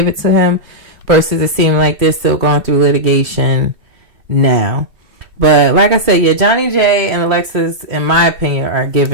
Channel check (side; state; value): left; late; 2.6 ms